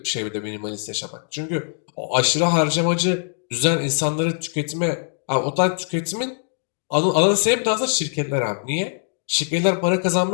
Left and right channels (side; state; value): right; silent; digital silence